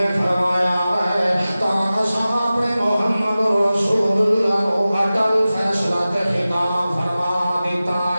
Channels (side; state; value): both; inverted; correlation -0.96